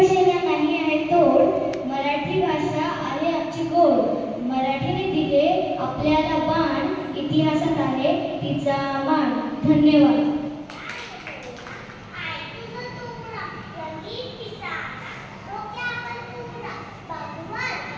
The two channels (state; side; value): identical; both; correlation 1.00